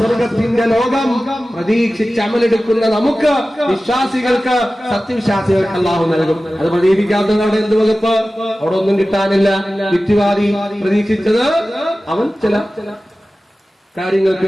ലോകം പ്രതീക്ഷിച്ച് അമലെടുക്കുന്ന നമുക്ക്, വിശ്വാസികൾക്ക്, സത്യവിശ്വാസികൾക്ക് അല്ലാഹു നൽകും. അത് പ്രതീക്ഷിക്കാത്തവരുടെ എന്ത് വകുപ്പ്? അവിടെ ഒന്നും കിട്ടാനില്ല. യുക്തിവാദി പ്രതീക്ഷിച്ചത് അവൻ ചില കാര്യങ്ങൾക്ക്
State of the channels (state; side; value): normal; both; correlation 0.96